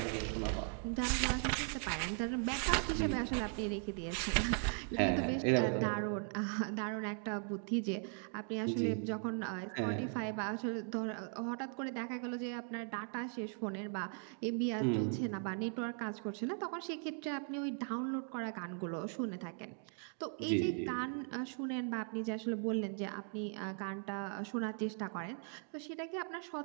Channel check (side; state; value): left; silent; 52 dB below the other